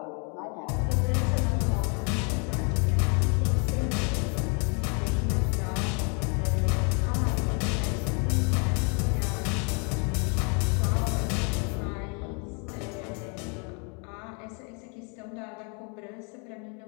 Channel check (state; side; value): quieter; right; 36.0 dB